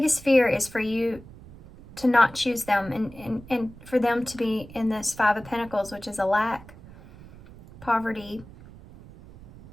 fear is for you to not choose them and for them to be in this 5 of Pentacles, which is a lack, poverty,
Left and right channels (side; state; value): right; noise; rumble, 19 dB below the sound